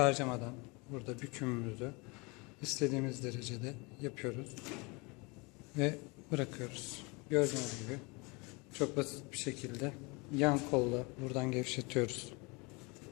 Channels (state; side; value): quieter; right; 28.0 dB